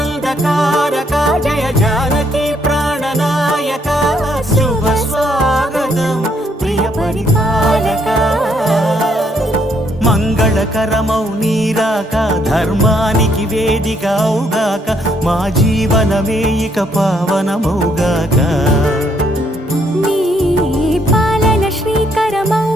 జయ జానకి ప్రాణనాయక శుభ స్వాగతం ప్రియ పరిపాలక మంగళకరమౌ నీరాక ధర్మానికి వేదిక అవుగాక మా జీవనమే ఇక పావనమౌగాక నీ పాలన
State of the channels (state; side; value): normal; both; correlation 0.71